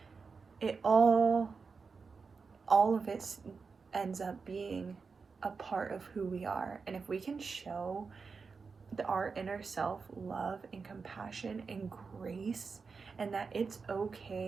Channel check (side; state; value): left; quieter; 5.0 dB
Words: it all of it ends up being a part of who we are. And if we can show our inner self love and compassion and grace, and that it's